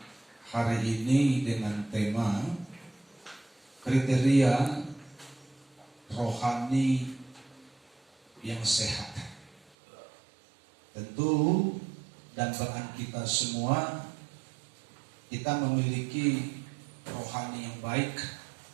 hari ini dengan tema kriteria rohani yang sehat. Tentu dambaan kita semua, kita memiliki rohani yang baik,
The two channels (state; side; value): drops out; left; at 9.6 s